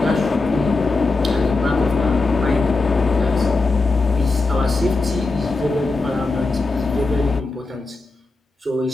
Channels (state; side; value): quieter; right; 3.5 dB